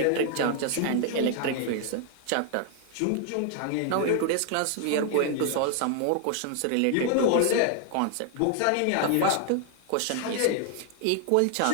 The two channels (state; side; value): different; both; correlation 0.00